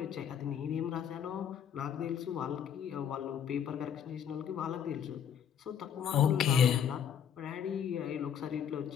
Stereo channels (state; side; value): quieter; right; 8.5 dB